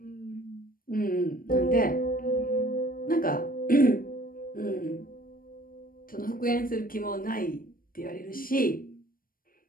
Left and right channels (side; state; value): right; late; 0.41 ms